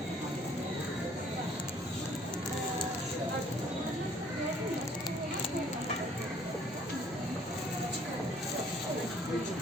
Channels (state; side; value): normal; both; correlation 0.59